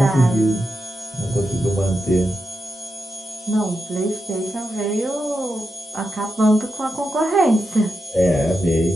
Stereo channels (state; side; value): normal; both; correlation 0.87